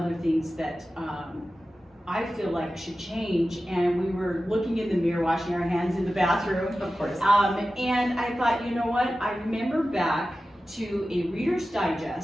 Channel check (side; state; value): both; normal; correlation 0.94